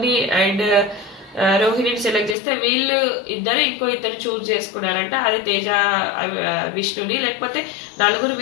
ని అండ్ రోహిణిని సెలెక్ట్ చేస్తే వీళ్ళు ఇద్దరు ఇంకో ఇద్దరు చూస్ చేసుకున్నారంట. అది తేజ, విష్ణుని, లేకపోతే నలుగురు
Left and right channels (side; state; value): right; drops out; at 2.4 s